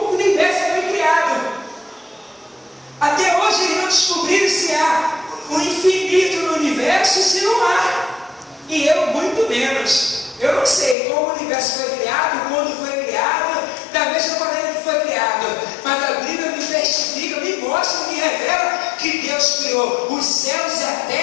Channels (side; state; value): right; drops out; at 11.0 s